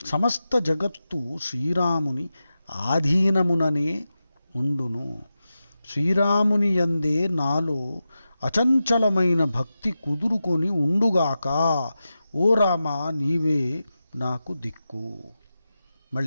సమస్త జగత్తు శ్రీరాముని ఆధీనముననే ఉండును. శ్రీరాముని యందే నాలో అచంచలమైన భక్తి కుదురుకొని ఉండుగాక. ఓ రామా, నీవే నాకు దిక్కు.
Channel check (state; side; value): inverted; both; correlation -0.92